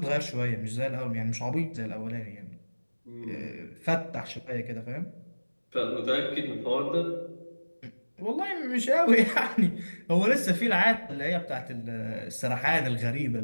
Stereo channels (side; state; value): both; inverted; correlation -1.00